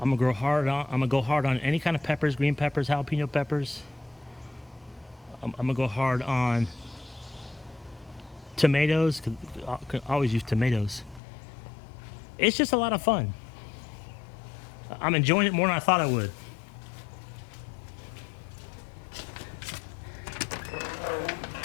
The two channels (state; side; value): drops out; right; at 11.2 s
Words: I'm gonna go hard on any kind of peppers, green peppers, jalapeno peppers. I'm gonna go hard on tomatoes, cause I can always use tomatoes. It's just a lot of fun. I'm enjoying it more than I thought I would.